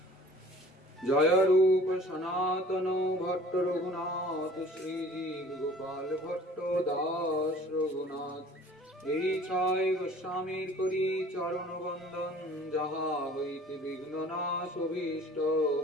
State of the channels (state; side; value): normal; both; correlation 0.49